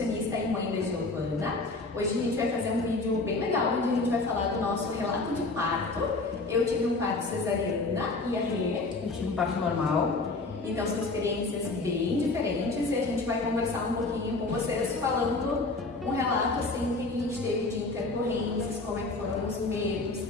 e mãe da Giovana. Hoje a gente vai fazer um vídeo bem legal, onde a gente vai falar do nosso relato de parto. Eu tive um parto cesariana e a Rê, eu tive um parto normal. Então são experiências bem diferentes e a gente vai conversar um pouquinho com vocês, falando um relato assim que a gente teve de intercorrências, como é que foram os medos.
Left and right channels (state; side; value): quieter; right; 3.4 dB